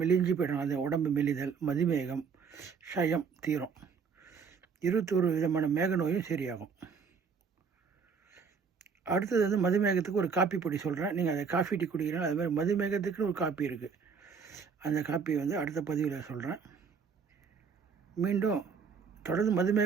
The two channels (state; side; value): quieter; left; 5.8 dB